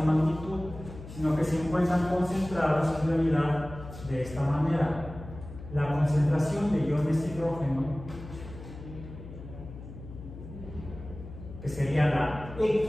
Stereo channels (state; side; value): noise; left; hum, 13 dB below the sound